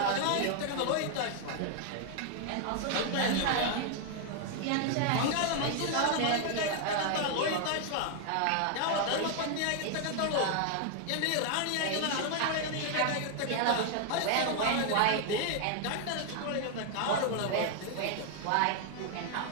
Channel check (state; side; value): different; both; correlation 0.00